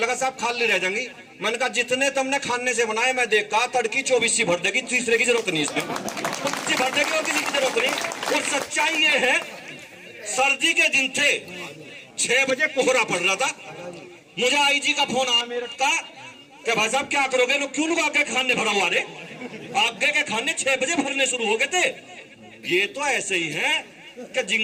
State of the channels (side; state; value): both; identical; correlation 1.00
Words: साहब खाली रह जाएंगी। मैंने कहा जितने तुमने खाने से बनाए मैं देखा, तड़की 24 भर देगी, तीसरे की जरूरत नहीं, इसमें भर देगी और किसी की जरूरत नहीं। और सच्चाई ये है, सर्दी के दिन थे, 6 बजे कोहरा पड़ रहा था, मुझे आईजी का फोन आया मेरठ का कि भाई साहब क्या करोगे? लोग क्यों लोग आगे खाने भरा हुआ रे? आगे के खाने 6 बजे भरने शुरू हो गए थे। ये तो ऐसे ही है कि